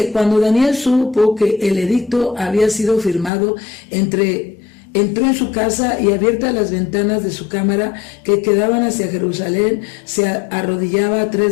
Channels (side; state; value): right; drops out; at 3.3 s